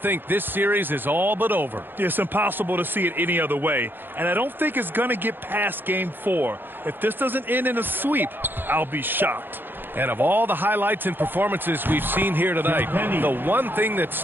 this series is all but over. It's impossible to see it any other way. And I don't think it's going to get past Game 4. If this doesn't end in a sweep, I'll be shocked. And of all the highlights and performances we've seen here tonight, the one thing that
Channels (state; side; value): late; left; 0.097 ms